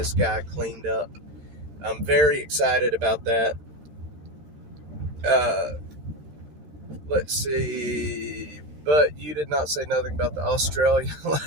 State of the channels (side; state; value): left; late; 13 ms